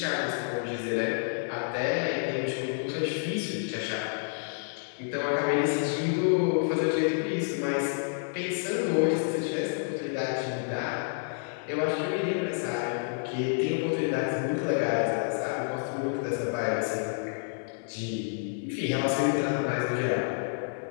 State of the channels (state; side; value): silent; right; 58 dB below the other